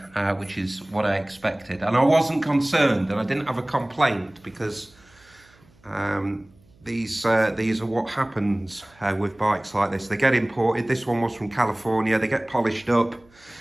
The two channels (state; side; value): noise; right; hum, 30 dB below the sound